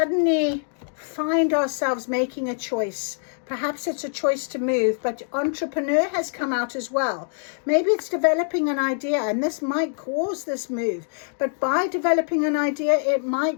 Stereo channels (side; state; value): right; silent; digital silence